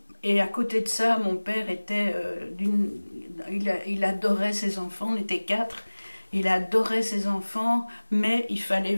et à côté de ça, mon père était il adorait ses enfants, on était quatre, il adorait ses enfants, mais il fallait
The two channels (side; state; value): both; inverted; correlation -1.00